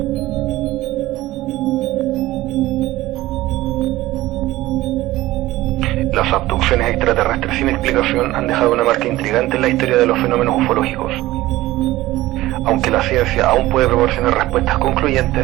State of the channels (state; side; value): quieter; left; 16.9 dB